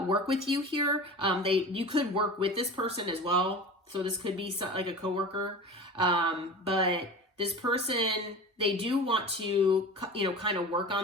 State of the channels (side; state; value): both; normal; correlation 0.34